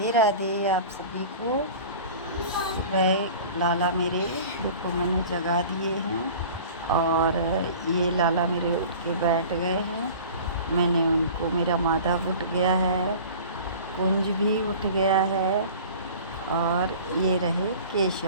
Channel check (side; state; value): both; inverted; correlation -0.41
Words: राधे आप सभी को। सुबह लाला मेरे देखो मैंने जगा दिए हैं और ये लाला मेरे उठ के बैठ गए हैं। मैंने उनको, मेरा माधव उठ गया है, कुंज भी उठ गया है और ये रहे